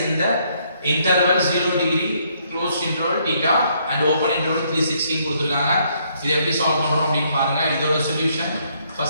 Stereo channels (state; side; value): inverted; both; correlation -0.70